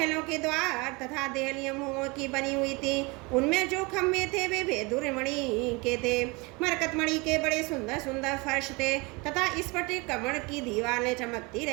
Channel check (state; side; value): quieter; left; 26.9 dB